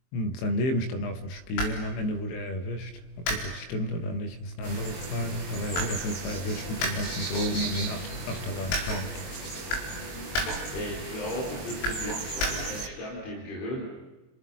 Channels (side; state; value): right; late; 23 ms